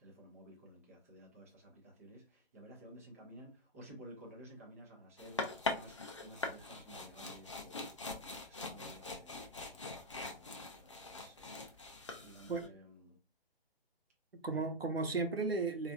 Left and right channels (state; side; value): normal; both; correlation 0.05